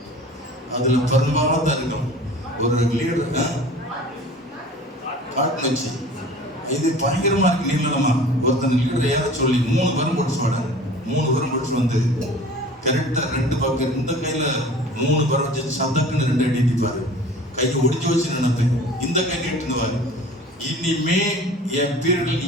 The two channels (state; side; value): normal; both; correlation 0.43